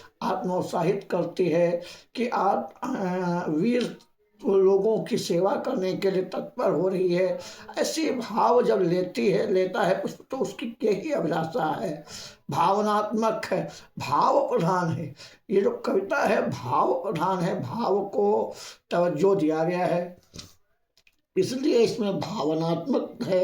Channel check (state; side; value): identical; both; correlation 1.00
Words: आत्मोत्साहित करती है कि वीर लोगों की सेवा करने के लिए तत्पर हो रही है। ऐसे भाव जब लेता है पुष्प तो उसकी यही अभिलाषा है, भावनात्मक है, भाव प्रधान है। ये जो कविता है भाव प्रधान है, भाव को तवज्जो दिया गया है, इसलिए इसमें भावनात्मक